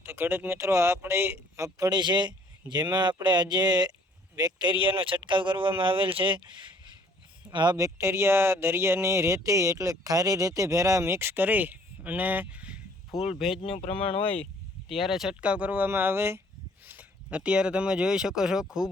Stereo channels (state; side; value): normal; both; correlation 0.58